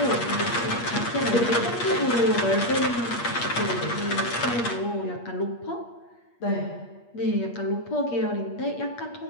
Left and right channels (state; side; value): late; right; 8.5 ms